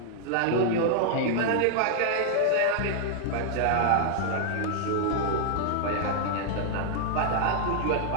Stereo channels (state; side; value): different; both; correlation 0.00